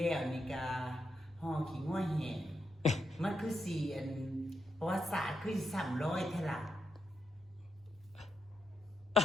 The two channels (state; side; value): normal; both; correlation 0.83